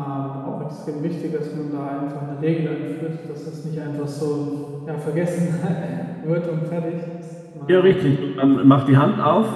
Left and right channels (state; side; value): identical; both; correlation 1.00